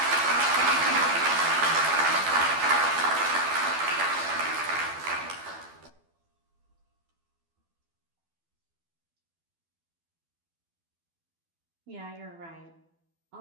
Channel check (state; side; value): late; left; 12 ms